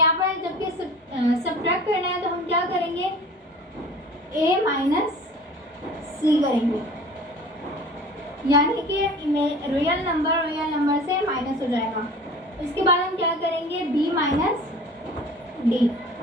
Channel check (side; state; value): both; normal; correlation 0.43